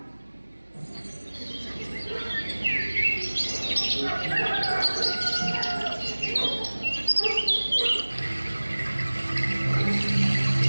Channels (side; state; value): both; inverted; correlation -1.00